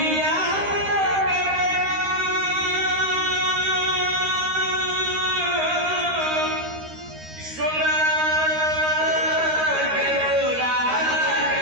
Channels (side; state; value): left; late; 13 ms